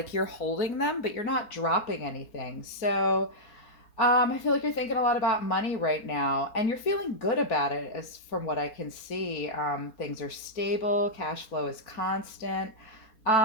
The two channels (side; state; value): right; late; 4.3 ms